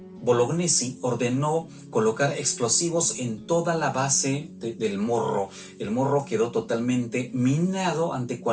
Bolognesi ordenó colocar explosivos en toda la base del Morro. El Morro quedó totalmente minado ante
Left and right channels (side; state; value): both; identical; correlation 1.00